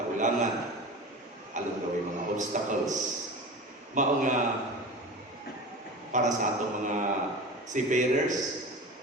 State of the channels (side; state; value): both; normal; correlation 0.32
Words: Along the way, mga obstacles. Mao nga para sa atong mga seafarers,